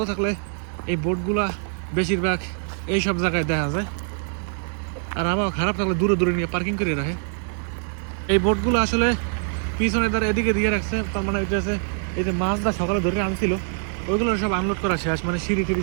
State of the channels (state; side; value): silent; left; 59 dB below the other